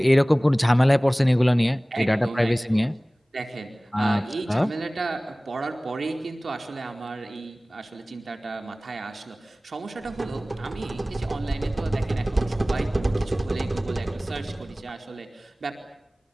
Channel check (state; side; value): normal; both; correlation 0.98